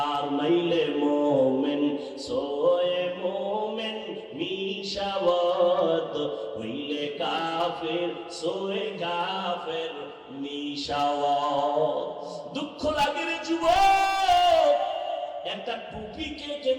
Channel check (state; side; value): identical; both; correlation 1.00